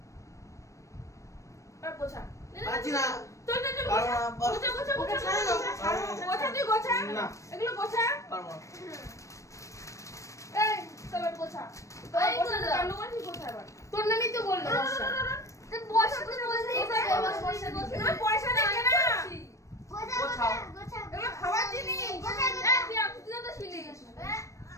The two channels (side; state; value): right; late; 0.15 ms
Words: আর গোছা। পারছি না। চল চল চল পারবো না, পারবো গোছা গোছা গোছা ছাড়ো না, ছাড়ো না। গোছা তুই গোছা না। এগুলো গোছা। পারবো না। এই চল গোছা এই গোছা গোছা। কান্ড করছিস গোছা এবার। তোর নামই তো বললো বর্ষা। তুই বসে তুই বসে এগুলো পয়সা দেখে না গোছাও গোছাও এগুলো খাওয়ার জিনিস। তুই তো ছিলি।